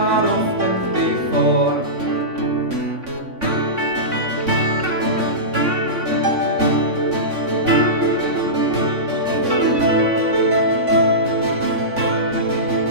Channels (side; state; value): left; late; 3.5 ms